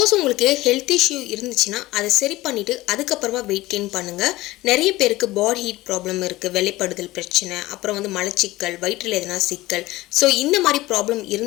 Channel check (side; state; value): right; quieter; 18.3 dB